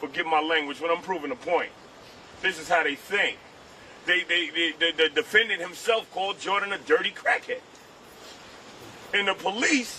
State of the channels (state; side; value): identical; both; correlation 1.00